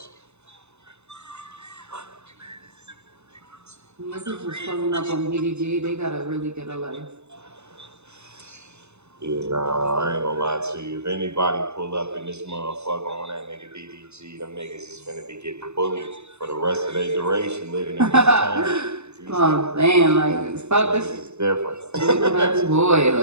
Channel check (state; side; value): late; left; 0.81 ms